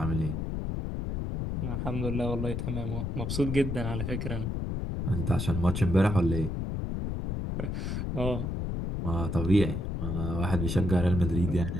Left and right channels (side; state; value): left; noise; rumble, 2 dB below the sound